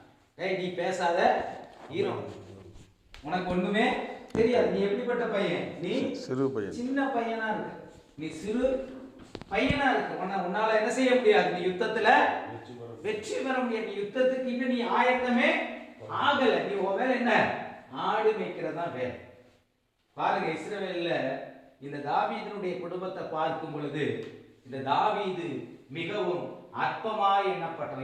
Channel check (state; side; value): identical; both; correlation 1.00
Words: ஏய், நீ பேசாத, ஹீரோ, உனக்கு ஒண்ணுமே தெரியாது, நீ எப்படிப்பட்ட பையன்? நீ சிறு பையன், சின்ன பையனா இருக்கு, நீ சிறு பையனா இருக்கு, உன்னால என்ன செய்ய முடியாது, நீ யுத்தத்துல வெற்றி பெற முடியாது, நீ யுத்தத்துக்கு இன்னும் நீ ஆயத்தமே ஆகல, நீ உன் வேலை என்ன? ஆடு மேய்க்கிறதா வேலை. பாருங்க, இஸ்ரவேல்ல இந்த தாவீதினுடைய குடும்பத்தை பார்க்கும் பொழுது இந்த தாவீது மிகவும் அற்பமாய்